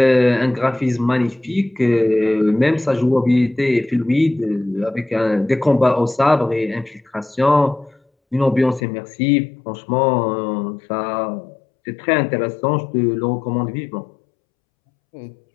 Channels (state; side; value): drops out; right; at 8.8 s